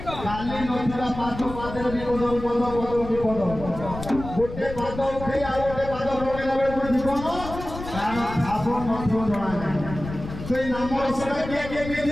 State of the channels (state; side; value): noise; left; rumble, 10 dB below the sound